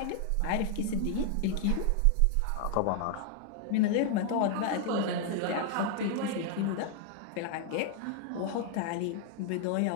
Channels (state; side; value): different; both; correlation 0.00